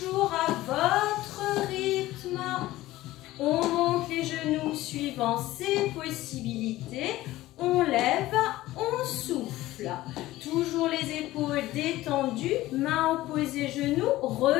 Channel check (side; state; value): right; quieter; 16.6 dB